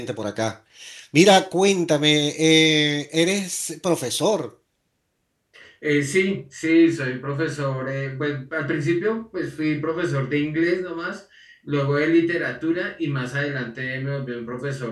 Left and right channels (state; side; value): identical; both; correlation 1.00